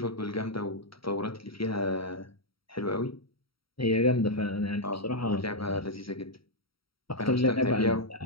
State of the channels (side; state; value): right; late; 0.75 ms